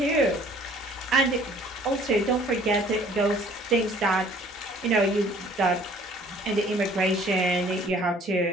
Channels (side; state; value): both; normal; correlation 0.54